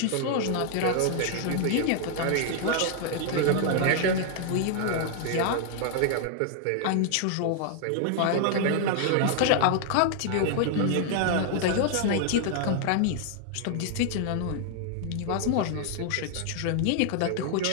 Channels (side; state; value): both; different; correlation 0.00